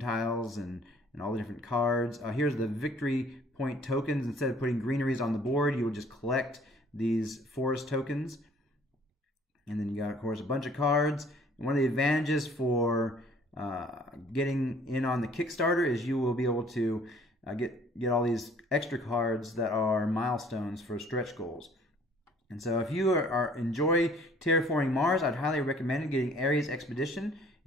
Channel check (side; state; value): both; normal; correlation 0.56